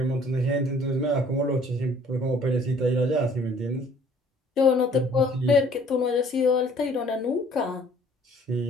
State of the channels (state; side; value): normal; both; correlation 0.56